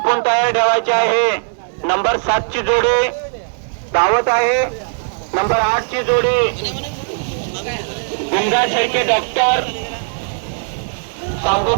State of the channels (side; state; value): left; silent; 68 dB below the other